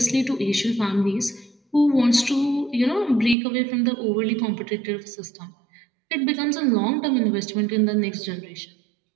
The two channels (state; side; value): drops out; left; at 3.4 s